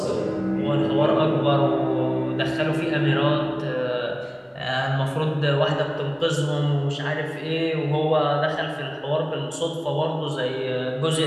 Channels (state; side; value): identical; both; correlation 1.00